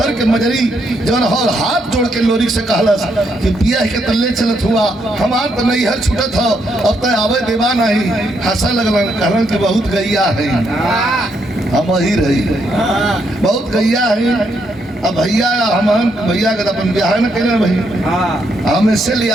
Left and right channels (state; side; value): normal; both; correlation 0.76